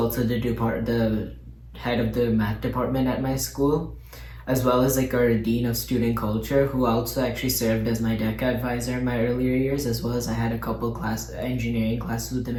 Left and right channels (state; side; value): identical; both; correlation 1.00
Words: the head of the math department at my school, as well as like our dean of student culture who also actually served as my DECA advisor in my earlier years, as well as I had a couple engineering classes with him